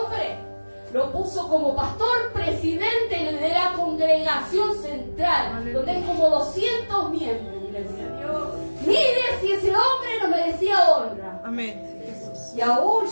Lo puso como pastor presidente de la congregación central, donde hay como 200 miembros. Mire si ese hombre no merecía honra. Amén. Jesús. Y aún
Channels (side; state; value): both; inverted; correlation -1.00